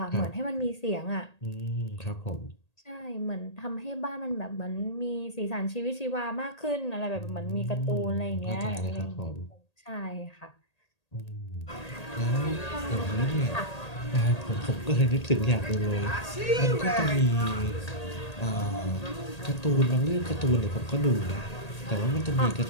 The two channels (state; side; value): late; right; 1.8 ms